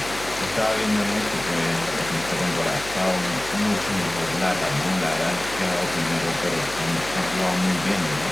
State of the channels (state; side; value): noise; left; hum, 15 dB below the sound